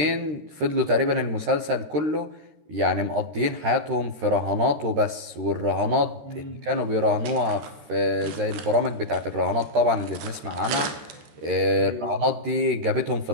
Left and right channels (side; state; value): left; late; 13 ms